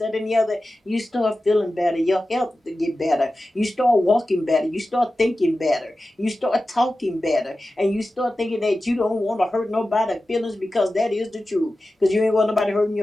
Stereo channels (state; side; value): normal; both; correlation 0.94